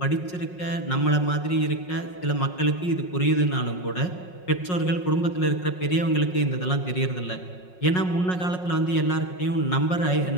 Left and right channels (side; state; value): right; late; 5.5 ms